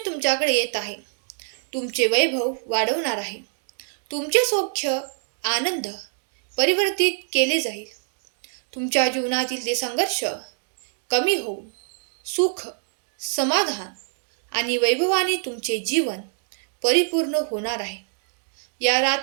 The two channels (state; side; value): silent; left; digital silence